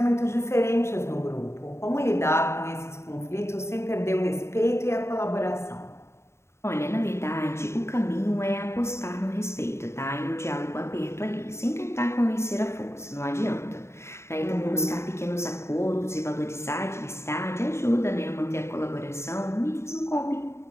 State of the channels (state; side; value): late; right; 0.13 ms